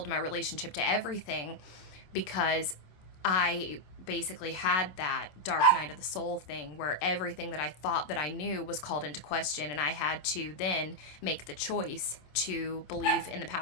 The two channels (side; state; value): right; late; 27 ms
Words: my relationship to everything, because I basically had that dark night of the soul thing where everything that I thought that I knew was called into question, and I had to then make the choice to believe in the